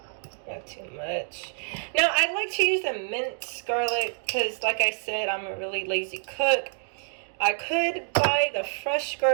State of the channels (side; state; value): left; silent; 55 dB below the other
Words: Not too much. Now, I like to use the minced garlic because, like I said, I'm a really lazy cook. I could buy the fresh